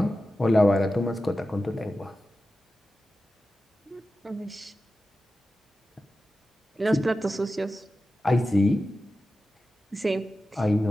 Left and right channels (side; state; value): both; normal; correlation 0.93